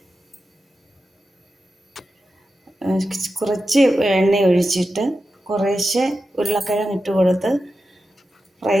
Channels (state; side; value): normal; both; correlation 0.91